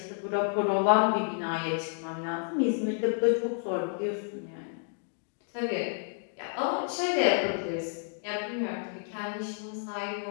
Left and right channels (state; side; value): silent; right; 58 dB below the other